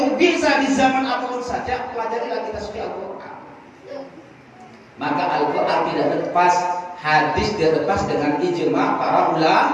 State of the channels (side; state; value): both; identical; correlation 1.00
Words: bisa di zaman apapun saja, pelajarilah kita suci Al-Quran. Maka Al-Quran tidak lepas, hadis tidak lepas dengan ijma para